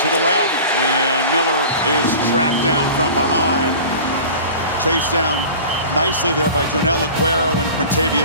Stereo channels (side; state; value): both; inverted; correlation -0.38